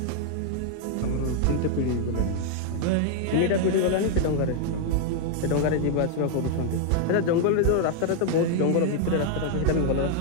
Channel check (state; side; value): different; both; correlation 0.00